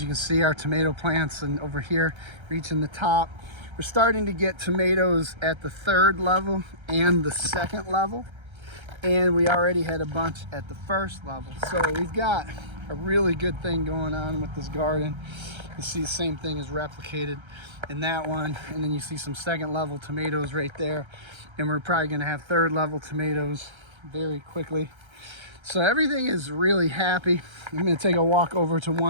you can see, our tomato plants and over here reaching the top. We're starting to get tomatoes at the 3rd level and the 2nd level, and we already had a bunch at the 1st level. So we've got a really good thing going on with this garden. You see the same thing is replicated in that one, and then you see some 2nd level tomatoes right there, and we're probably going to have 3rd level tomatoes very quickly. So everything is really happy. I'm going to take a walk over to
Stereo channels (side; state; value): left; late; 1.3 ms